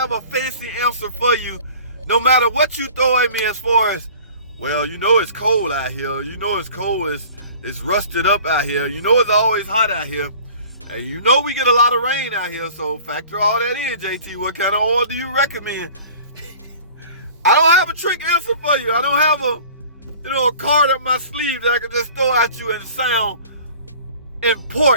a fancy answer for you. No matter what you throw at me as far as, well, you know it's cold out here. You know it's cold. It's rusted up out here. You know it's always hot out here. And you know we get a lot of rain out here. So factor all that in, JT. What kind of oil do you recommend? I don't have a trick answer for you. I don't have a card up my sleeve that I can just throw at you and sound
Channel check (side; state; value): both; inverted; correlation -0.46